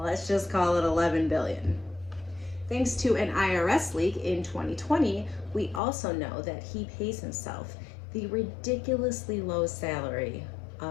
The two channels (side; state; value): right; drops out; at 5.8 s